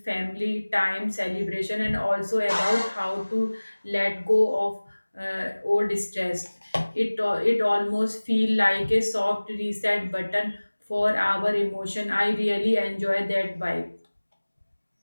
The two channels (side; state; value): both; inverted; correlation -1.00